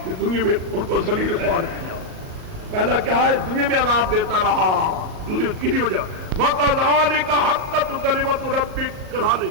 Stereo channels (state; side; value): late; left; 38 ms